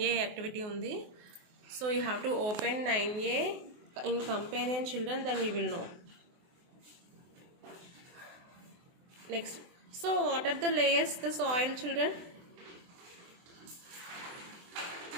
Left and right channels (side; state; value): left; late; 24 ms